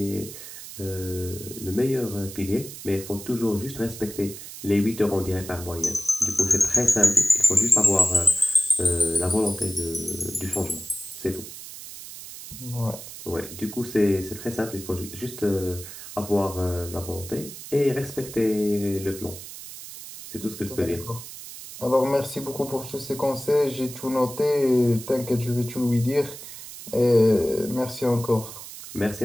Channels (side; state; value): right; noise; hiss, 12 dB below the sound